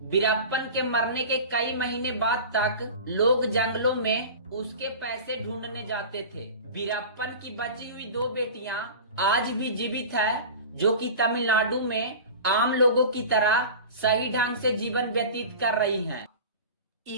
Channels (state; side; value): inverted; both; correlation -0.34